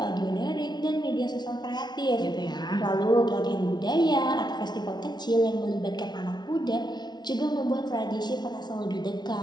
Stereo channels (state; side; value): late; right; 0.20 ms